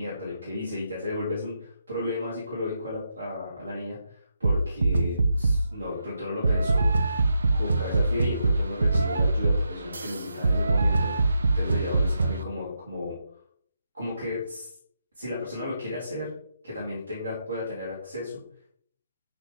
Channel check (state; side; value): inverted; both; correlation -0.82